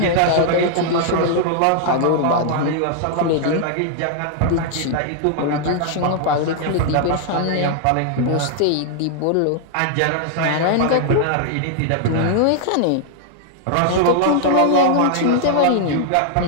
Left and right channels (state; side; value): different; both; correlation 0.00